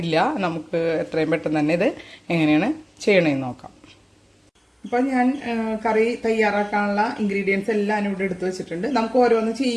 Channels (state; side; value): identical; both; correlation 1.00